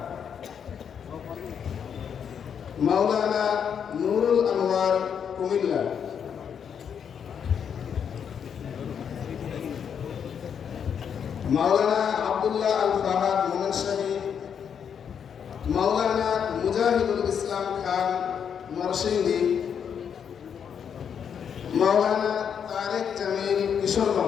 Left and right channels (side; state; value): right; quieter; 7.7 dB